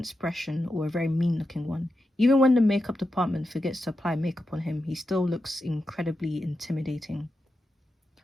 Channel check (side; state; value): both; normal; correlation 0.89